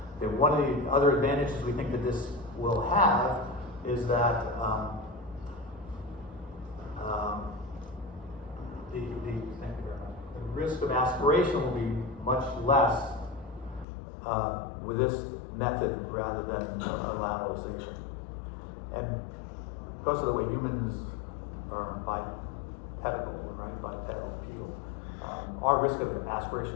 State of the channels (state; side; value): drops out; right; at 13.9 s